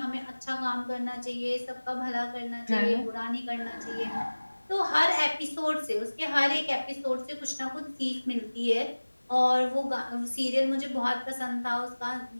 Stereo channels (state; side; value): inverted; both; correlation -1.00